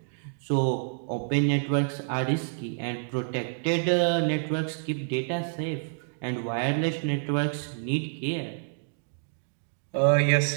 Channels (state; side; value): silent; left; digital silence